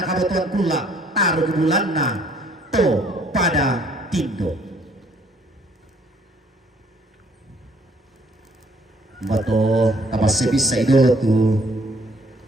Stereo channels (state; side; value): normal; both; correlation 0.62